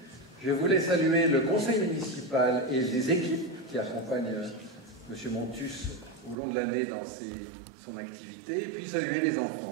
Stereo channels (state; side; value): drops out; left; at 6.4 s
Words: Je voulais saluer le conseil municipal et les équipes qui accompagnent M. Montus au long de l'année dans son activité, et puis saluer les